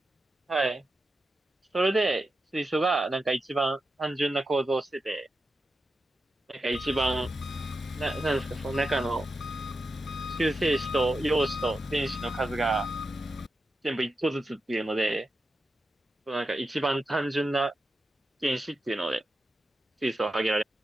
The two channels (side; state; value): both; normal; correlation 0.89